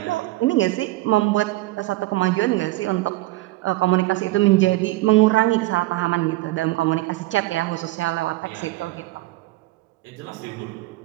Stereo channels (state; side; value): quieter; left; 18.6 dB